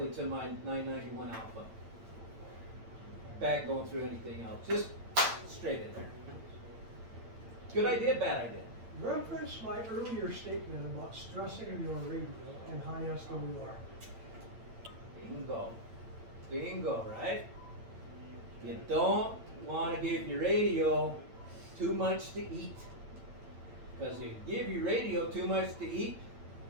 to my 991 alpha. Back going through anything else. Just straight in there. Good idea, bad idea? Reference my earlier statement about stressing your radio and high SWR. Bingo. Bingo, right? You don't want to give your radio too much to eat. Because if you give your radio too much to eat,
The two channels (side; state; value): left; late; 8.8 ms